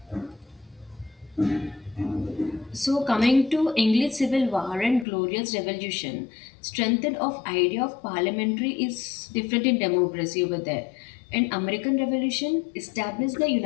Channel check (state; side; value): drops out; right; at 5.1 s